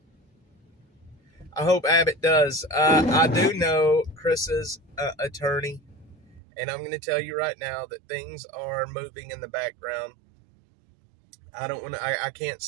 I hope Abbott does. I do know Chris's attorney, and I'm going to tell you right now that things are moving in the background. I can't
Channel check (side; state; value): left; drops out; at 6.4 s